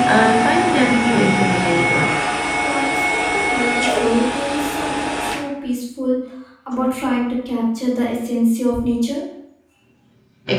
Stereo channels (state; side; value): identical; both; correlation 1.00